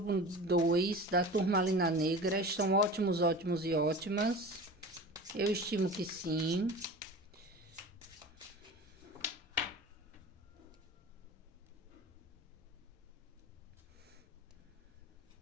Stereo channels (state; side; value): normal; both; correlation 0.35